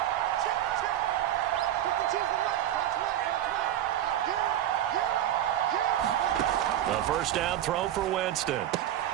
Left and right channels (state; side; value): quieter; left; 11.9 dB